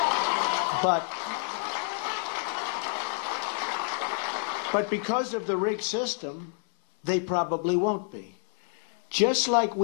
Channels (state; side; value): silent; right; digital silence